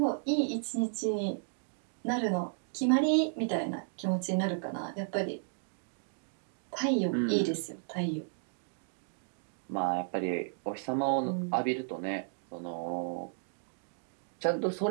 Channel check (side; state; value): left; silent; digital silence